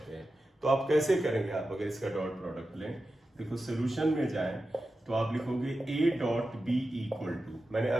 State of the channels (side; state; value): both; normal; correlation 0.92